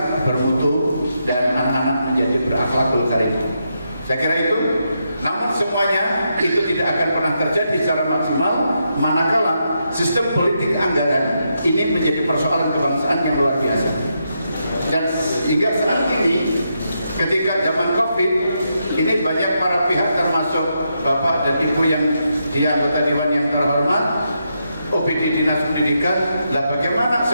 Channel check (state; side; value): inverted; both; correlation -0.82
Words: bermutu dan anak-anak menjadi berakhlakul karim. Saya kira itu. Namun semuanya itu tidak akan pernah terjadi secara maksimal manakala sistem politik anggaran ini menjadi persoalan kebangsaan yang luar biasa. Dan hingga saat ini, ketika zaman COVID, ini banyak para pihak termasuk Bapak dan Ibu yang di anggota Dewan yang terhormat, OPD Dinas Pendidikan, lah bagaimana